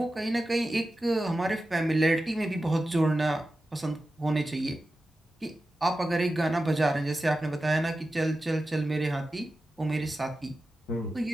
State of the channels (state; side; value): normal; both; correlation 0.93